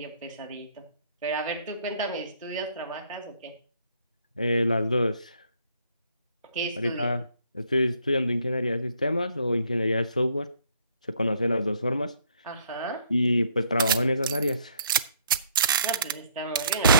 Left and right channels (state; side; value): inverted; both; correlation -0.64